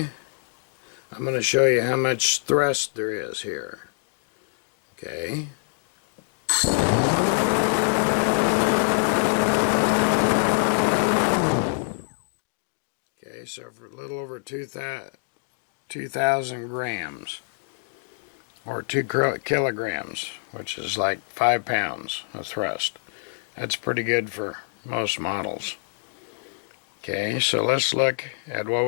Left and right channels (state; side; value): silent; right; digital silence